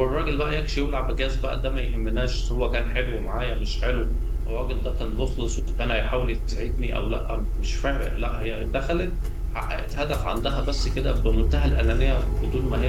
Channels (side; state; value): both; identical; correlation 1.00